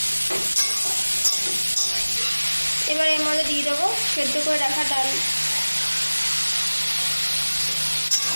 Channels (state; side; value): inverted; both; correlation -1.00